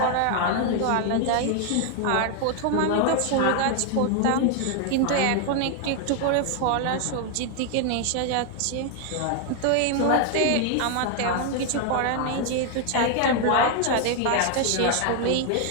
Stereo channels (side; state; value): both; different; correlation 0.00